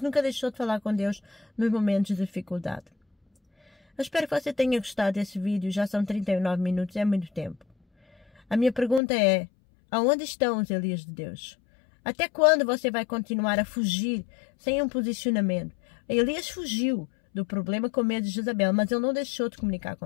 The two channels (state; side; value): drops out; right; at 9.0 s